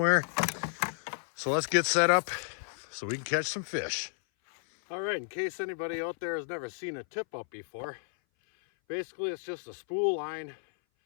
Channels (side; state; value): right; silent; 57 dB below the other